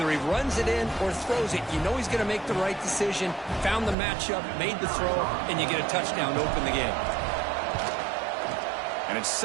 he runs it in or throws it, you know he's going to make the right decision. Found the matchup, made the throw, and you get a touchdown to open the game. And it's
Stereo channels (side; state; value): left; drops out; at 4.0 s